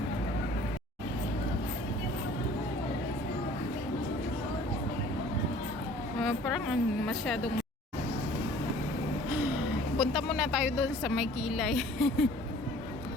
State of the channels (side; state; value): both; normal; correlation 0.51